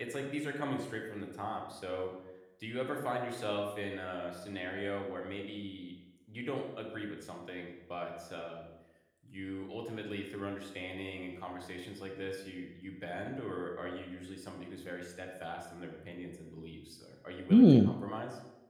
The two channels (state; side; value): identical; both; correlation 1.00